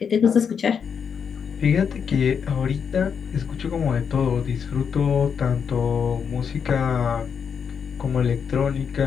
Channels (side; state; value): right; quieter; 6.9 dB